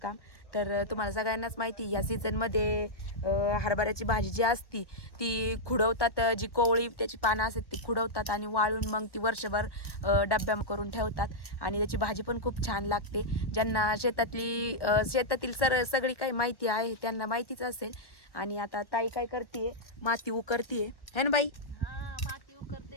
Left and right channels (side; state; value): right; late; 1.2 ms